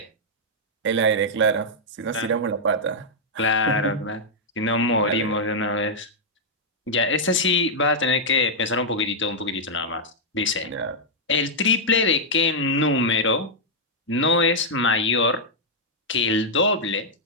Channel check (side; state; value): both; normal; correlation -0.06